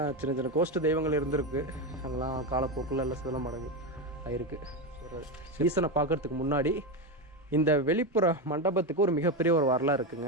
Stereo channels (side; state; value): both; normal; correlation 0.13